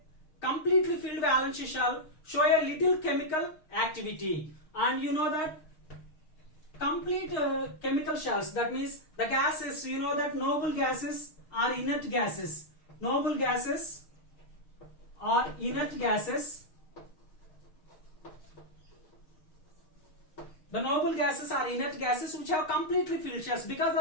completely filled valence shell show a little chemical activity, and you know that complete chemical shells, that means the gases, you know that noble gases are inert gases. Noble gases are inert gases. The noble gases are inert gases which have completely filled shells. Because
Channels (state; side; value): late; right; 6.4 ms